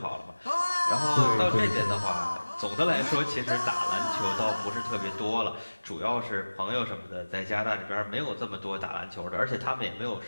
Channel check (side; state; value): both; inverted; correlation -1.00